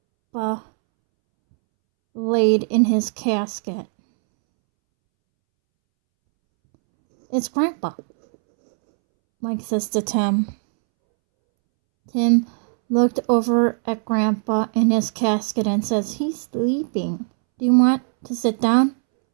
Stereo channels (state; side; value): silent; left; 66 dB below the other